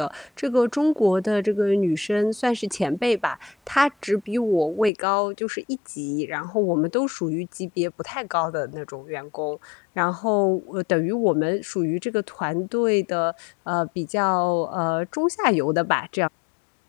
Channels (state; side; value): drops out; right; at 4.9 s